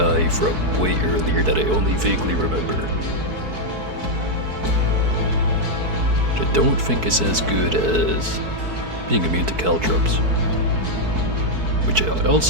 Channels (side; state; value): left; late; 4.6 ms